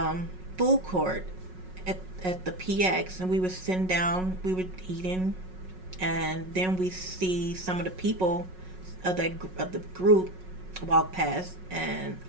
food court at the PX, and we were sitting down, we were eating, and then we see some of the people of the group walk past, and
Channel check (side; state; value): left; late; 5.4 ms